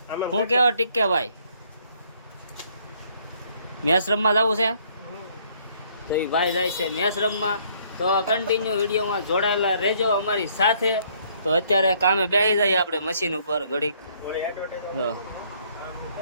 હું કેવો ટીકે ભાઈ, મેચ રમવા જવું છે તો એ ભાઈ જાય છે મેચ રમવા. તો કન્ટિન્યુ વિડીયોમાં જોડાયેલા રહેજો અમારી સાથે. તો અત્યારે કામે બેસી જઈએ આપણે મશીન ઉપર ઘડીક.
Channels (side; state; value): both; inverted; correlation -0.65